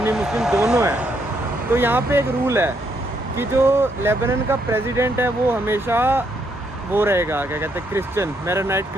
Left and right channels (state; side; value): normal; both; correlation 0.74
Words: मुस्लिम दोनों हैं। तो यहाँ पे एक रूल है कि जो लेबनान का प्रेसिडेंट है वो हमेशा वो रहेगा, क्या कहते हैं, क्रिश्चियन, मेरोनाइट